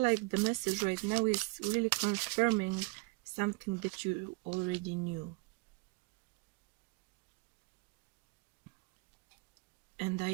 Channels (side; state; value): left; quieter; 27.7 dB